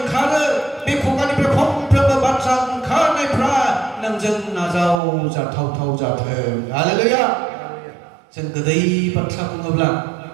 ओंखारो बे खुगानिफ्राय फंफ्रोमबो बाथ्रा ओंखारनायफ्रा नोंजों नाजावजाथाव जाथों हालेलुया जों गोदै बाथ्रा बुङोब्ला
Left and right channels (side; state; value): left; drops out; at 5.0 s